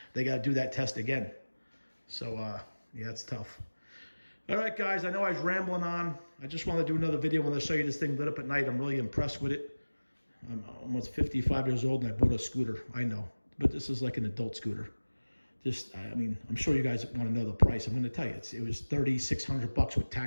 they got to do that test again. So yeah, it's tough. All right, guys, I know I was rambling on. I just want to do another video when I show you this thing lit up at night. I'm really impressed with it. I'm almost 55 years old, and I bought a scooter. I know, but this is like an adult scooter. I mean, I'm sure you guys want to know the price. I'm going to tell you, it was $3,600 with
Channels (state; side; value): inverted; both; correlation -1.00